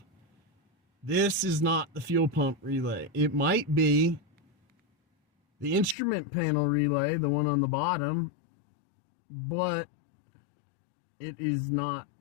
this is not the fuel pump relay. It might be the instrument panel relay, the one on the bottom, but it is not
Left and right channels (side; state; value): right; drops out; at 6.0 s